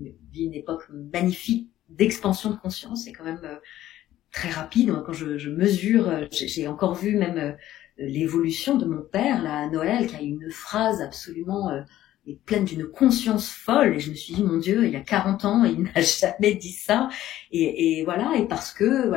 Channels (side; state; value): right; quieter; 13.6 dB